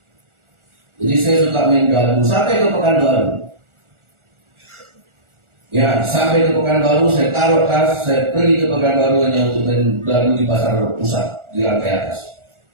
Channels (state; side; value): late; left; 1.4 ms